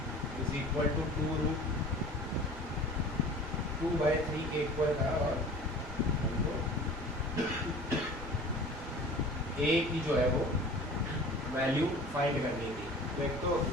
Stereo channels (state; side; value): normal; both; correlation 0.42